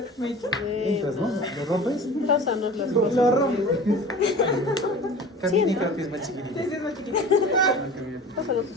Entras, ¿no? ¿Lo rompes? Pásanos las Lo cosas. rompes. Camini creo que es más chiquitito. Pásanos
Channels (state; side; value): normal; both; correlation 0.38